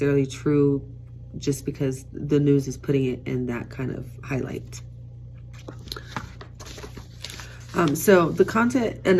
true just because the news is putting it in that kind of highlight. So the content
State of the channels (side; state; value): both; identical; correlation 1.00